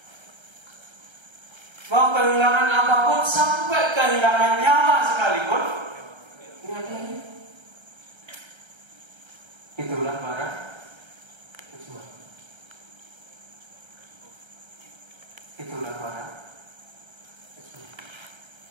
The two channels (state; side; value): late; left; 1.3 ms